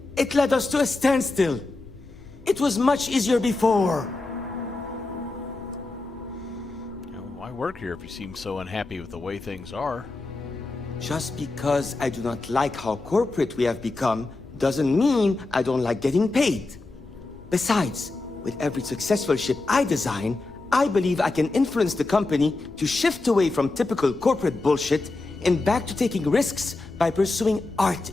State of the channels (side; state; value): right; quieter; 3.2 dB